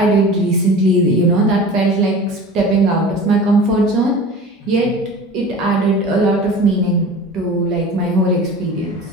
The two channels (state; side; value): normal; both; correlation 0.37